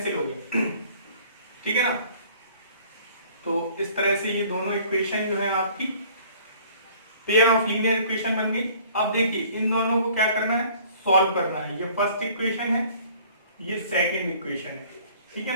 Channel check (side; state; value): both; inverted; correlation -0.53